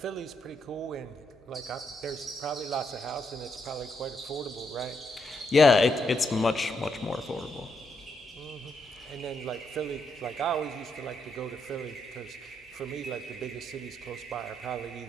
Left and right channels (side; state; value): both; normal; correlation 0.78